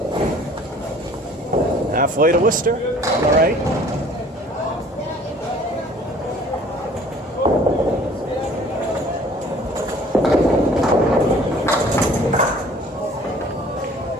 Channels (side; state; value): both; normal; correlation 0.52